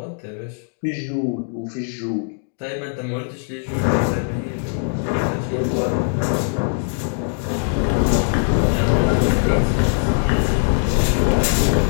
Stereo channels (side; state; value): right; silent; digital silence